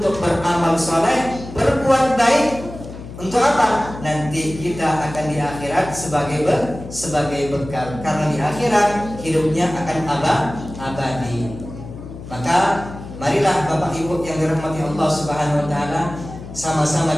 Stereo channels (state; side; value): noise; left; hum, 13 dB below the sound